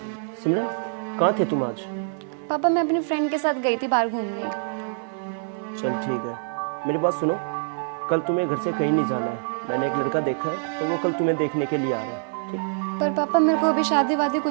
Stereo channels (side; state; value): left; silent; 60 dB below the other